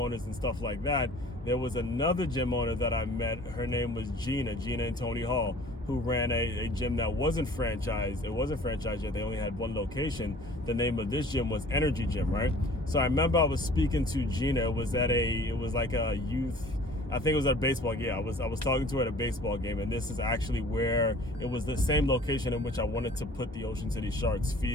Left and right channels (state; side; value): normal; both; correlation 0.48